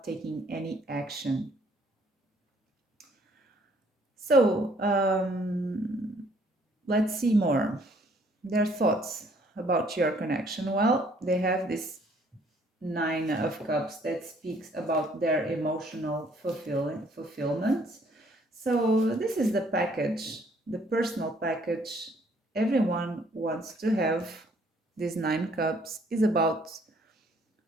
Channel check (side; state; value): both; normal; correlation 0.63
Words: taking any action. So let's see more. Their thoughts about your connection. Well, they have this Nine of Cups that speaks about their emotional fulfillment. So this is the package, the personal package everyone wants to have. This Nine Cups is about